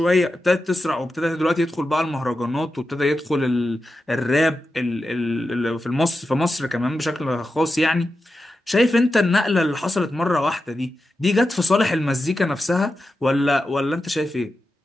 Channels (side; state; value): both; normal; correlation 0.90